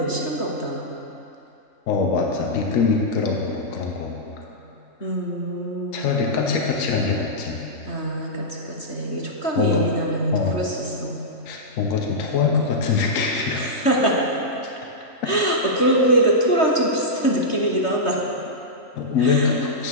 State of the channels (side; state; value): right; late; 3.2 ms